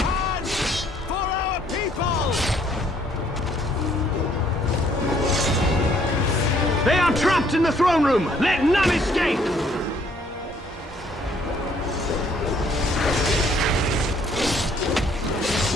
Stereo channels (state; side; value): normal; both; correlation 0.64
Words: In the throne room! Let none escape!